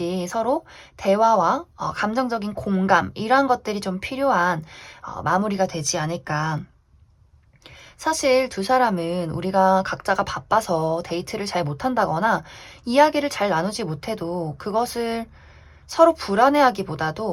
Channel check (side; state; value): both; identical; correlation 1.00